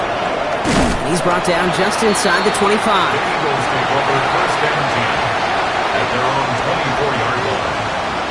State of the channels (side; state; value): both; identical; correlation 1.00